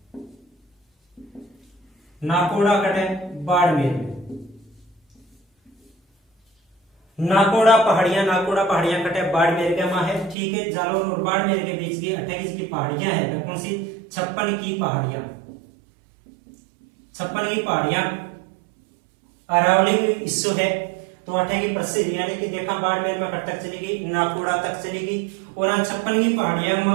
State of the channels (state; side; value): drops out; left; at 10.4 s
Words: नाकोड़ा कटे बाड़मेर में, नाकोड़ा पहाड़ियां कटे बाड़मेर के वहां है। ठीक है, जालौर और बाड़मेर के बीच की 28 की पहाड़ियां है। कौन सी? 56 की पहाड़ियां, 56 की पहाड़ियां अरावली हिस्सो है। तो 8 की प्रसिद्ध, यानी कि देखा बाड़मेर में कट तक चलेगी, नाकोड़ा तक चलेगी। और 56 की पहाड़ियां